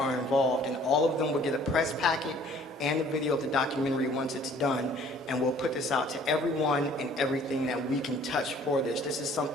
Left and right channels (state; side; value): normal; both; correlation 0.55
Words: involved, and all of them will get a press packet and a video of the documentary once it's done, and we'll put this out to everyone and everything that we can touch for this. This is